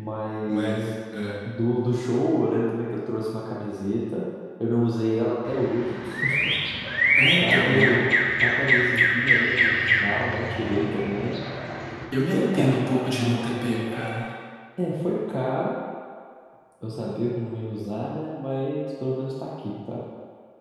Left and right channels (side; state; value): both; identical; correlation 1.00